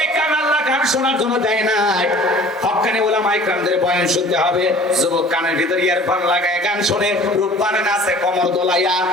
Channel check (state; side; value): normal; both; correlation 0.47